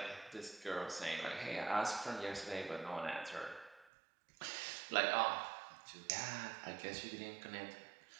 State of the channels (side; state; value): left; drops out; at 3.9 s